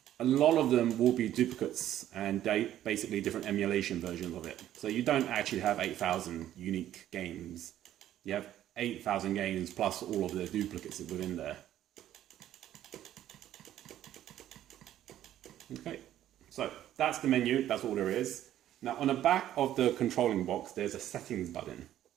a lot of them will be duplicates and basically different emulation versions of it. So you don't actually have 8,000 unique games. You have 8,000 games plus all of the duplicates within there. Okay, so that's the menu, that's all there is. Now on the back of the controlling box, there's a settings button.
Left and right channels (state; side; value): quieter; left; 12.2 dB